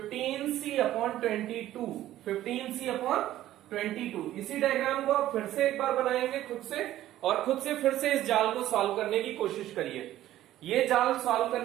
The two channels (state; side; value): quieter; left; 13.7 dB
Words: 15C/22। इसी डायग्राम को आप फिर से एक बार बनाएंगे खुद से, और खुद से फिर से इस जाल को सॉल्व करने की कोशिश करिए। ये जाल सॉल्व